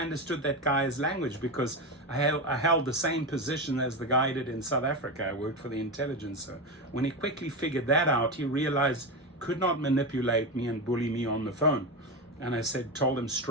understood that guy's language because I held the same position as the guy did in South Africa. I worked for the intelligence. So when he quickly figured that out, he realized could not manipulate me and bully me on the phone. And I told him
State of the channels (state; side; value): normal; both; correlation 0.17